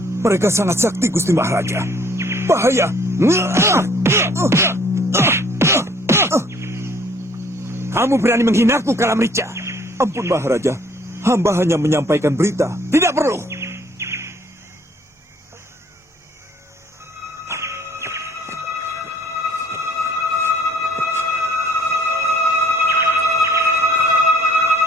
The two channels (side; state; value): both; normal; correlation 0.59